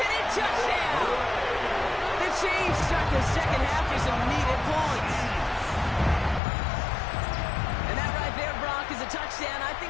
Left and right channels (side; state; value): right; drops out; at 6.4 s